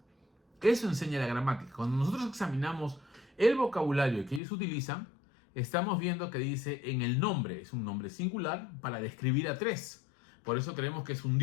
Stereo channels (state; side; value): drops out; right; at 4.4 s